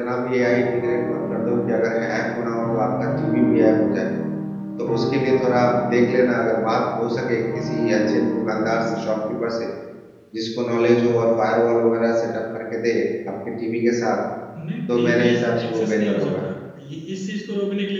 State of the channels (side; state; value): both; identical; correlation 1.00